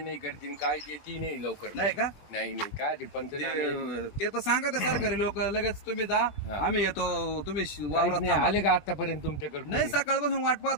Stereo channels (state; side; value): late; right; 20 ms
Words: करतील काय येते नाही लवकर नाही का? नाही नाही काय ते पंचनामे ते तर सांगा ते सरकारी लोक लगेच तुम्ही जा हा. आम्ही येतो तुम्ही काहीच वावरात नाही थांबा. आले का आतापर्यंत तुमच्याकडे नाही कोणी? सकाळपासून वाट